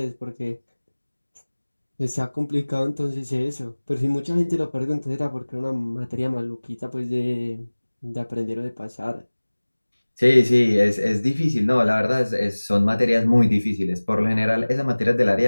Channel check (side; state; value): both; inverted; correlation -1.00